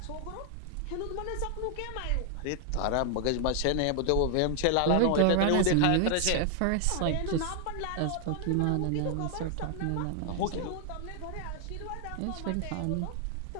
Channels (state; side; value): different; both; correlation 0.00